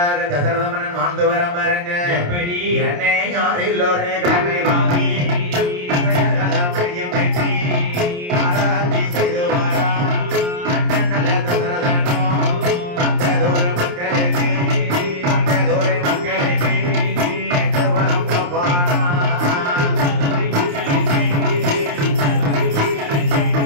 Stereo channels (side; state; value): left; late; 28 ms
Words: தசரத மன்னன் வாழ்ந்து வர பாருங்க. என்னை யாரில் ஒரு கடமை வாங்கி